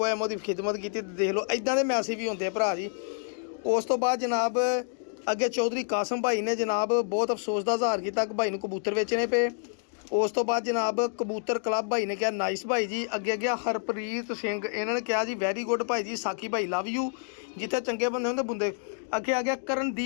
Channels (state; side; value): silent; right; digital silence